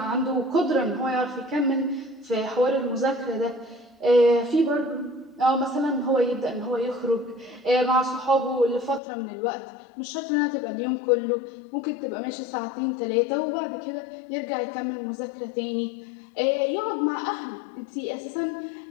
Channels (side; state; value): right; drops out; at 9.0 s